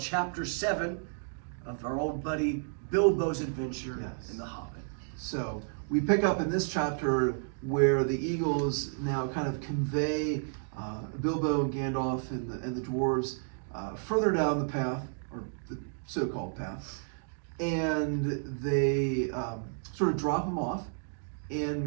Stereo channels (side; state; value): left; silent; digital silence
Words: 7 of our old buddy Bilbo's adventure in The Hobbit. So we pick up in this chapter where the Eagles now kind of convey Bilbo and Gandalf and the dwarves further down the path, or the so-called path, and they sort of drop them off,